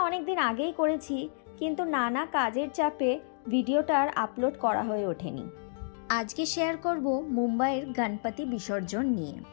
অনেক দিন আগেই করেছি, কিন্তু নানা কাজের চাপে ভিডিওটার আপলোড করা হয়ে ওঠেনি। আজকে শেয়ার করব মুম্বাইয়ের গণপতি বিসর্জন নিয়ে।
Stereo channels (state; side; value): silent; right; digital silence